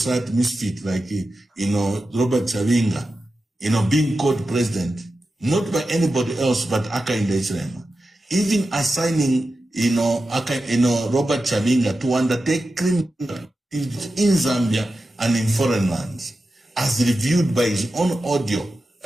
misfit like, Robert Chavinga, being called president, not by anybody else but Nakachinda Hichilema. Even assigning, Robert Chavinga to undertake criminal in Zambia and in foreign lands, as reviewed by his own audio,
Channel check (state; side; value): normal; both; correlation 0.91